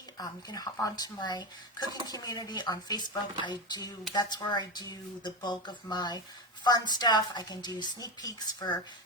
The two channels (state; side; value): normal; both; correlation 0.18